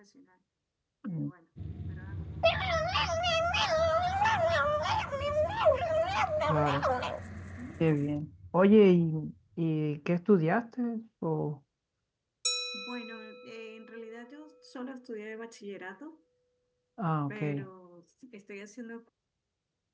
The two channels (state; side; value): identical; both; correlation 1.00